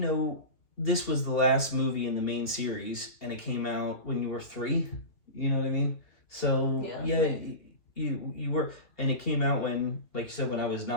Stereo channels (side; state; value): right; late; 2.7 ms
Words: this was the last movie in the main series, and it came out when you were 3. You know what I mean? So you were, and it came out when, like you said, when I was